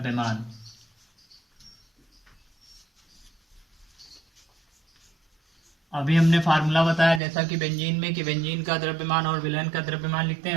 अभी हमने फार्मूला बताया जैसा कि बेंजीन में कि बेंजीन का द्रव्यमान और विलयन का द्रव्यमान लिखते हैं,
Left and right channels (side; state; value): left; drops out; at 7.2 s